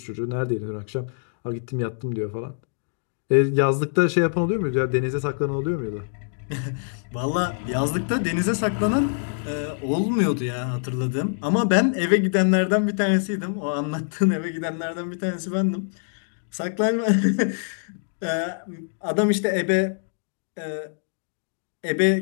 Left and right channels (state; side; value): silent; right; digital silence